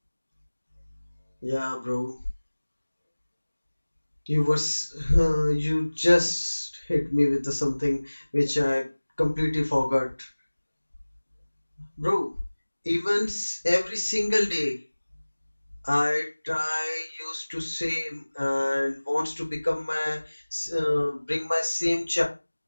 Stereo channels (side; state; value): both; inverted; correlation -1.00